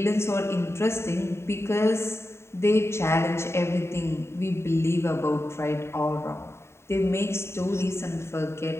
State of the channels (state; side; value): late; right; 0.13 ms